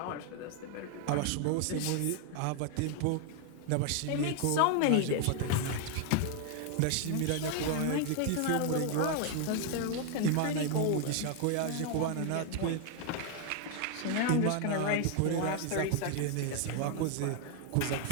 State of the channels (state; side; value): different; both; correlation 0.00